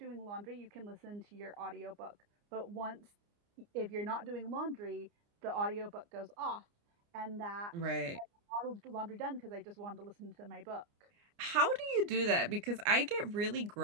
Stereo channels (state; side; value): late; left; 29 ms